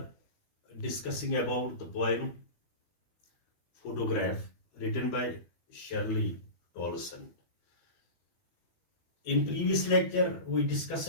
discussing about the poem Photograph written by Shirley Tolson. In previous lecture, we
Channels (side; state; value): right; late; 13 ms